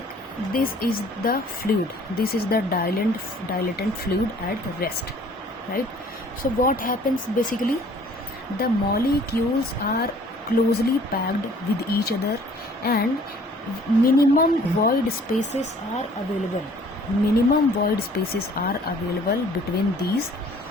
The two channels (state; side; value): normal; both; correlation 0.55